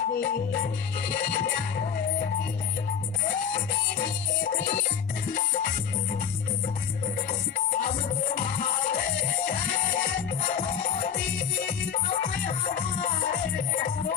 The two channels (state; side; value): quieter; right; 7.8 dB